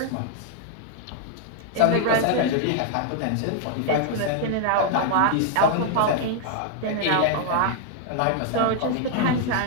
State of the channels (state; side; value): different; both; correlation 0.00